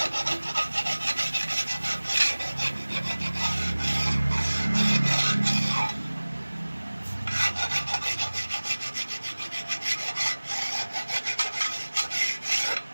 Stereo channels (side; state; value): both; inverted; correlation -1.00